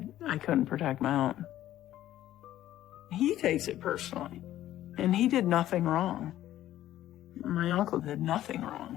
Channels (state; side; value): quieter; right; 13.3 dB